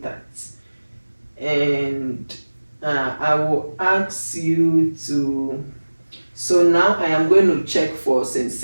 And I will ask you to, so now I am going to check for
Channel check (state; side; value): inverted; both; correlation -1.00